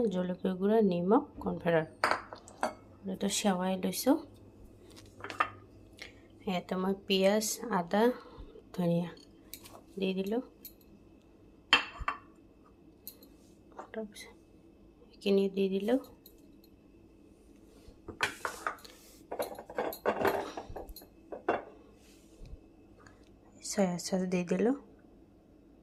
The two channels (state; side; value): identical; both; correlation 1.00